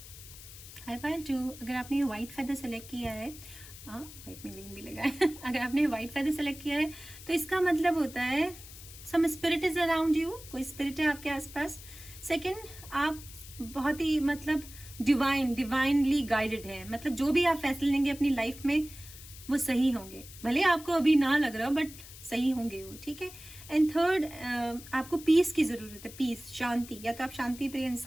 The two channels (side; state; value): left; noise; hiss, 16 dB below the sound